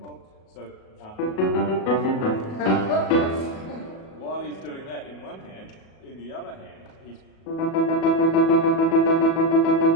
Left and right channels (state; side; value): late; right; 37 ms